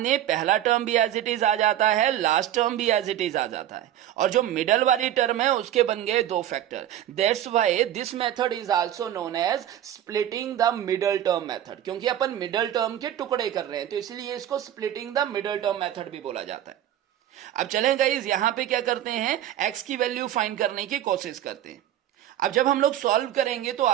दें, पहला टर्म भी एज इट इज आ जाता है, लास्ट टर्म भी एज इट इज आ जाता है, और जो मिडल वाली टर्म है उसके बन गए 2 factor. That's why this method is also known as splitting the middle term method, क्योंकि अपन मिडल टर्म के टुकड़े कर रहे हैं तो इसलिए इसको splitting the middle term method भी बोला जाता है। अब चलें गाइज, यहां पे क्या करते हैं, x की वैल्यू फाइंड करने की कोशिश करते हैं। अब जब हम लोग सॉल्व करेंगे तो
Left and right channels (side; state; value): left; quieter; 11.7 dB